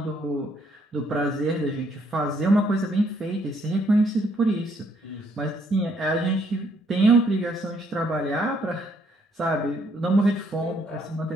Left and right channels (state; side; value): normal; both; correlation 0.69